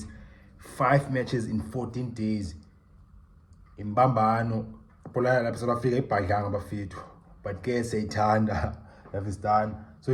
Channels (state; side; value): identical; both; correlation 1.00